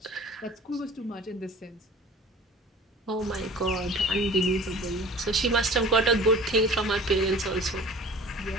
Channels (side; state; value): both; normal; correlation 0.44